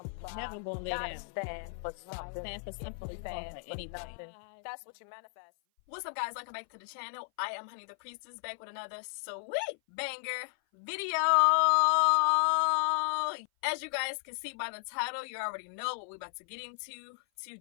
Never gonna lay Gotta down. stand for something. Stand for something, stand for anything. nothing. That's what you manifest. What's up, guys? Welcome back to the channel. I am Honey the Priestess, back with another sweet banger video. As you guys can see by the title, you already know what we're about to get into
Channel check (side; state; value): right; silent; 55 dB below the other